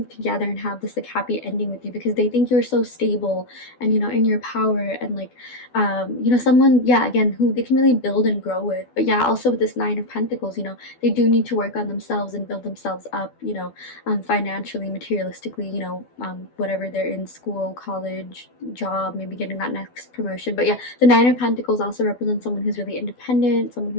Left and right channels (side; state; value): right; late; 12 ms